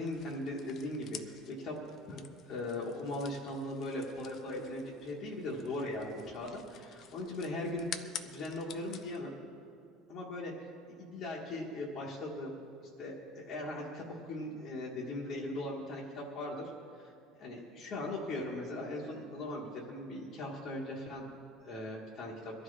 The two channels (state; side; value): normal; both; correlation 0.41